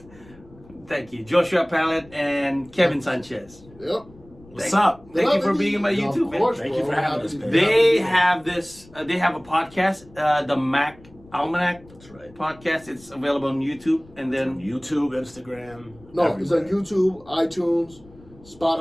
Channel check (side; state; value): left; noise; rumble, 24 dB below the sound